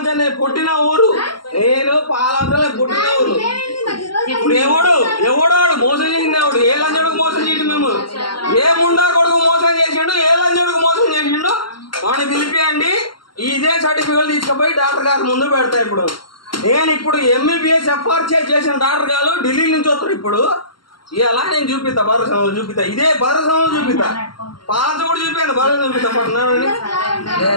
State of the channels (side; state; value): right; late; 0.72 ms